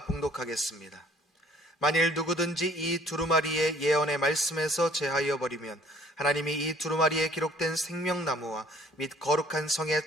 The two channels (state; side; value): normal; both; correlation 0.56